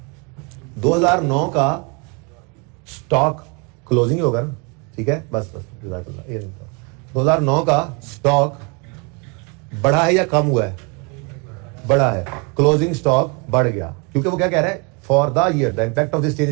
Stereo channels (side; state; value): left; quieter; 32.4 dB